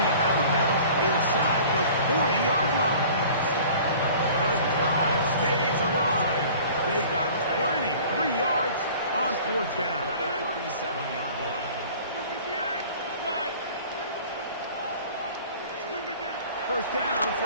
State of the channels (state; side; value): inverted; both; correlation -0.46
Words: out of bounds inside the 40-yard line. The drive stays alive. They got 23 yards on fourth down. 37-yard line. First down